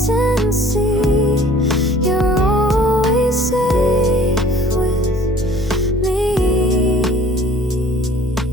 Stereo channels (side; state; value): both; normal; correlation 0.52